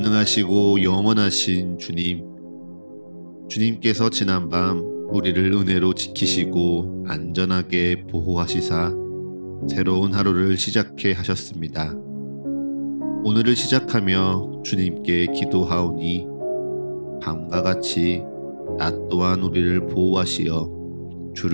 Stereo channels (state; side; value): inverted; both; correlation -1.00